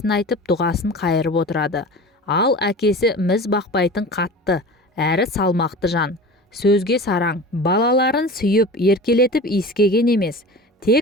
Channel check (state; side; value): normal; both; correlation 0.35